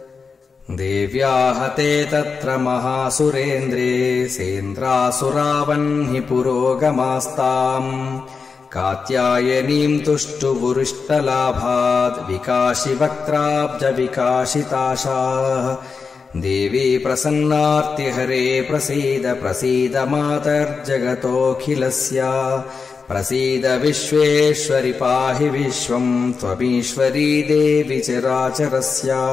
देव्याहते तत्र महासुरेन्द्रे सेन्द्रासुरावह्नि पुरोगमास्ताम् कात्यायनीम् तुष्टुवुरिष्टलाभाद् विकाशिवक्त्राब्जविकाशिताशाः। देवी प्रसन्नार्तिहरे प्रसीद प्रसीद मातर्जगतोऽखिलस्य प्रसीद विश्वेश्वरि पाहि विश्वम् त्वमीश्वरी देवि चराचरस्य।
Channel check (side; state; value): right; quieter; 5.0 dB